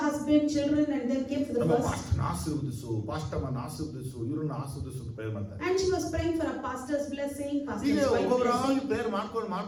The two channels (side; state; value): both; identical; correlation 1.00